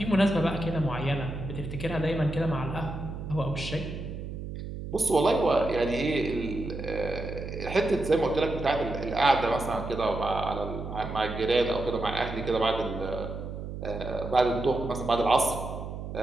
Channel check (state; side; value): noise; right; hum, 8 dB below the sound